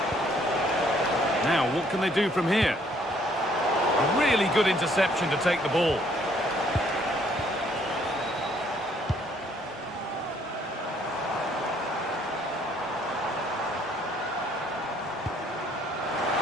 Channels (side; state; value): both; normal; correlation 0.64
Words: Now, what can they do from here? A really good interception to take the ball.